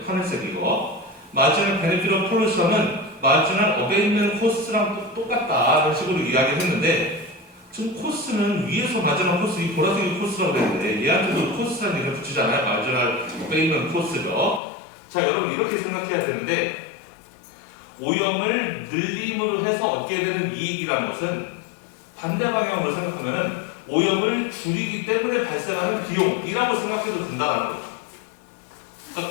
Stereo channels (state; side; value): drops out; right; at 14.6 s